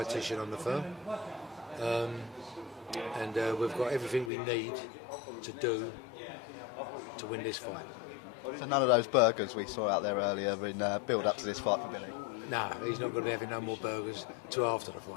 on the firm. And we've got everything we need to do to win this fight. So none of those burgers we saw out there earlier in build up to this fight for Billy? No, he's not going to be having no more burgers till after the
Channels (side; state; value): right; drops out; at 4.3 s